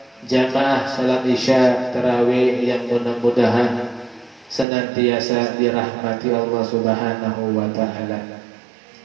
jamaah salat isya tarawih yang mudah-mudahan senantiasa dirahmati Allah Subhanahu wa taala.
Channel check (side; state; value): left; drops out; at 4.7 s